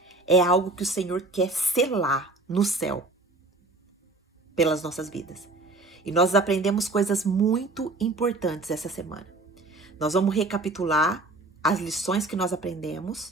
é algo que o Senhor quer selar no céu pelas nossas vidas. E nós aprendemos coisas muito importantes essa semana. Nós vamos recapitular as lições que nós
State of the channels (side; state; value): left; quieter; 3.1 dB